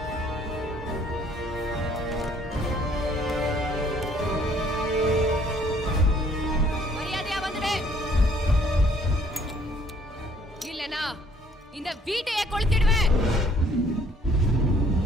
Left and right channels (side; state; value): both; normal; correlation 0.61